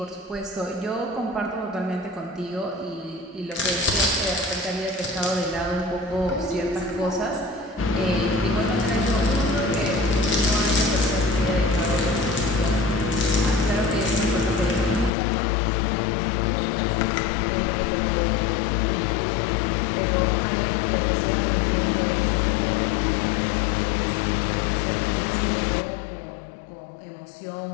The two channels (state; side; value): drops out; right; at 15.1 s